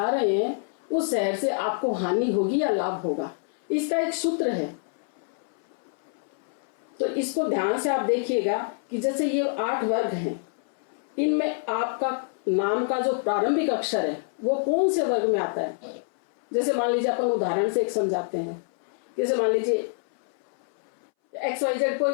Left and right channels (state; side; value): silent; right; 61 dB below the other